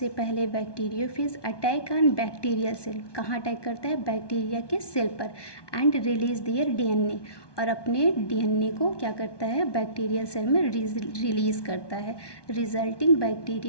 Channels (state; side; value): late; right; 1.2 ms